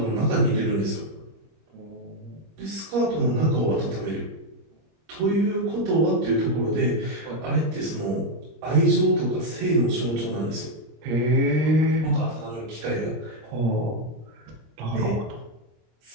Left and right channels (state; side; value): late; left; 25 ms